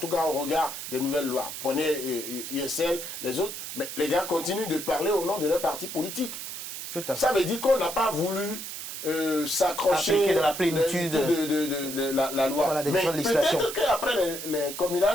cas au regard des nouvelles lois. Prenez USL, les autres, mais les gars continuent de parler au nom de leur parti politique. Ça veut dire qu'on n'a pas voulu s'accrocher de la plénitude de la loi. Voilà, mais peut-être qu'après les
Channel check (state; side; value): noise; right; hiss, 8 dB below the sound